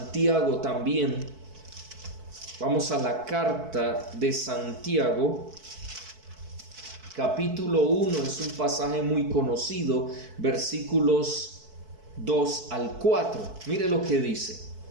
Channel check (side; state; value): left; late; 4.6 ms